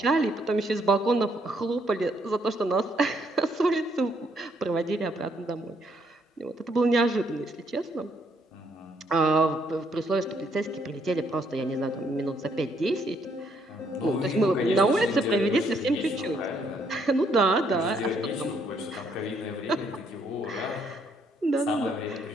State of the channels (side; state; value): both; normal; correlation 0.70